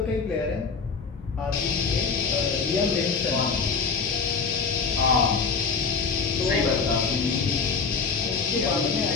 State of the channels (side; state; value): right; quieter; 5.2 dB